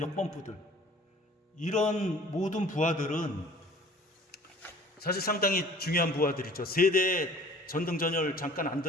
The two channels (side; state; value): both; normal; correlation 0.49